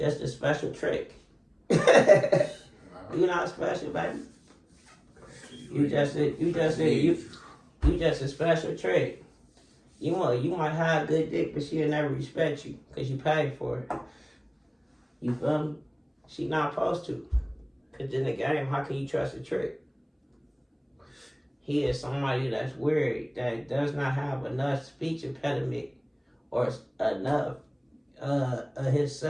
a special trick. You not special, baby. You just a special trick. You might have good dick, but she'll never respect you because you paid for it. You feel me? She not supposed to. Because in the game, how can you trust a trick? He is somebody that's weird, that does not have enough speech impediment or enough of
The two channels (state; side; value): identical; both; correlation 1.00